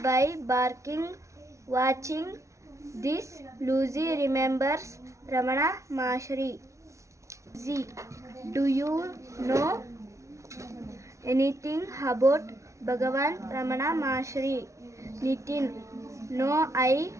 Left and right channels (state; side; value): late; left; 0.14 ms